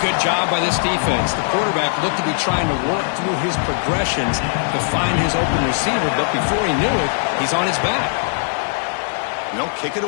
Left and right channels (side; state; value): right; silent; 57 dB below the other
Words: good job by this defense. The quarterback looked to be trying to work through his progressions to find his open receiver, but before he knew it, he's on his back. And they'll kick it